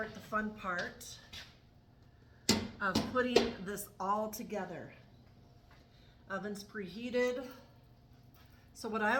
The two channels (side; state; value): both; identical; correlation 1.00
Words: the fun part of putting this all together. Oven's preheated. So what I